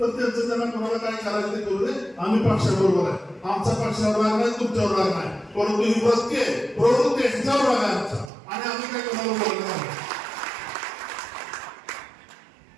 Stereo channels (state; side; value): drops out; left; at 8.3 s